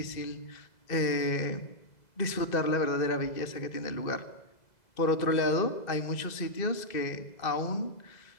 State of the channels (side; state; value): right; late; 2.0 ms